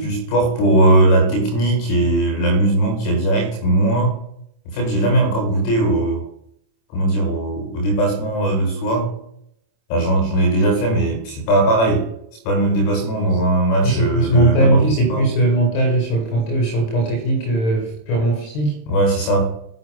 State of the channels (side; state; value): right; late; 26 ms